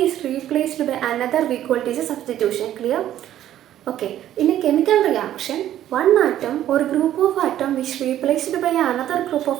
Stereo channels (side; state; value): left; quieter; 12.0 dB